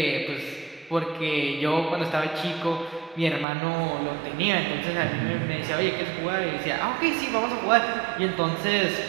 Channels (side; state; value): left; drops out; at 3.5 s